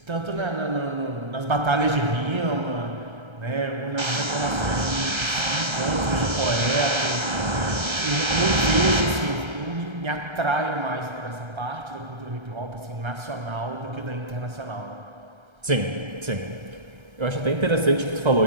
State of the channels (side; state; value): left; late; 1.3 ms